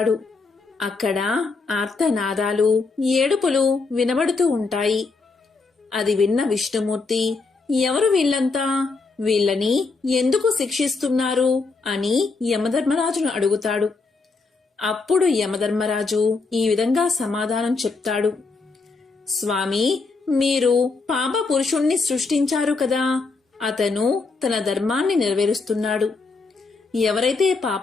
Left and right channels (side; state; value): right; quieter; 4.0 dB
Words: అక్కడ ఆర్తనాదాలు, ఏడుపులు వినబడుతూ ఉంటాయి. అది విన్న విష్ణుమూర్తి, ఎవరు వీళ్ళంతా, వీళ్ళని ఎందుకు శిక్షిస్తున్నారు అని యమధర్మరాజును అడుగుతాడు. అప్పుడు యమధర్మరాజు ఈ విధంగా సమాధానం చెప్తాడు. స్వామి, మీరు పాప పురుషుణ్ణి సృష్టించారు కదా, అతను తన ధర్మాన్ని నెరవేరుస్తున్నాడు. ఎవరైతే